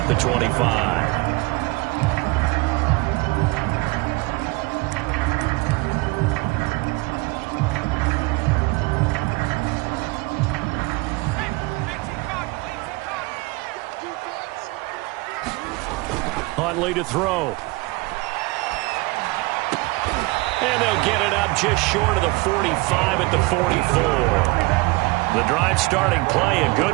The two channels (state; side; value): quieter; left; 24.1 dB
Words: the 25. Huntley to throw. And they'll get it up just short of the 45 at the 44. The drive starting play, a